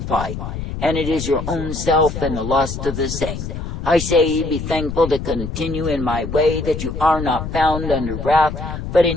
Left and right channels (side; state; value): left; noise; rumble, 6 dB below the sound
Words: fight, and it is your own self and the lust of the same. I say, be thankful to continue in my way, that you are not found under wrath, but